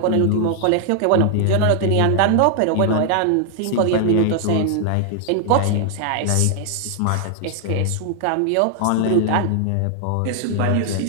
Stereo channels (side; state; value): both; different; correlation 0.00